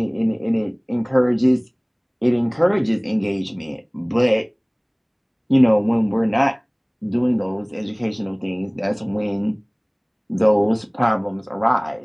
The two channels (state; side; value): identical; both; correlation 1.00